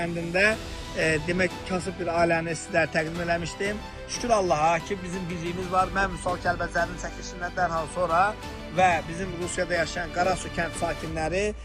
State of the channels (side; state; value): both; identical; correlation 1.00